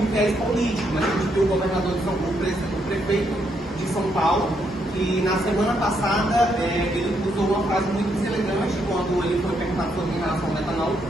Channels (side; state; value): both; normal; correlation 0.76